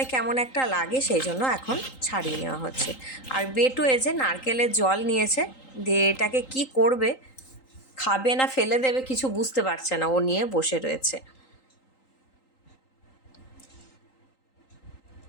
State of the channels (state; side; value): late; right; 3.8 ms